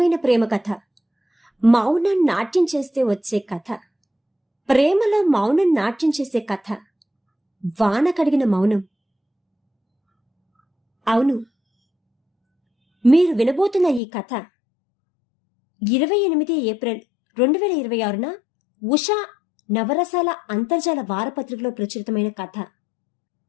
ప్రేమ కథ, మౌనం నాట్యం చేస్తే వచ్చే కథ, ప్రేమలో మౌనం నాట్యం చేసే కథ, వాన కడిగిన మౌనం. అవును, మీరు వినబోతున్న ఈ కథ 28 ఏప్రిల్ 2026న ఉషా నవరసాల అంతర్జాల వారపత్రికలో ప్రచురితమైన కథ.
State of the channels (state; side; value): drops out; right; at 14.0 s